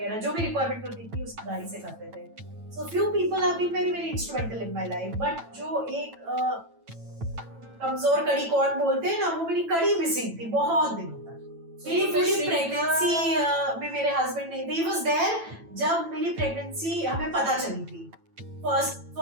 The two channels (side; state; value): left; late; 9.0 ms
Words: जो भी रिक्वायरमेंट होती थी उसकी गाड़ी से करते थे। So few people have been very very instrumental in my life, but जो एक कमजोर कड़ी कौन बोलते हैं ना, वो मेरी कड़ी मिसिंग थी बहुत दिनों तक। मेरी पूरी प्रेगनेंसी में मेरे हस्बैंड नहीं थे। ही वाज देयर जब मेरी प्रेगनेंसी हमें पता चली थी,